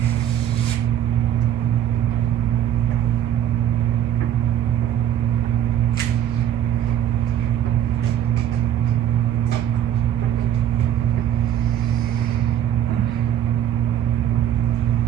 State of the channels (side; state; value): left; quieter; 10.5 dB